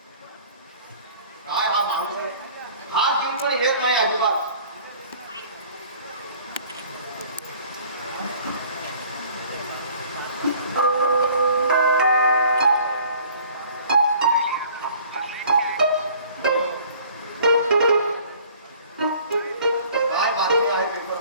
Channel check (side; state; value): both; inverted; correlation -0.52